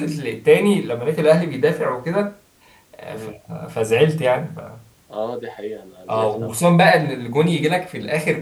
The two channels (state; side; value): identical; both; correlation 1.00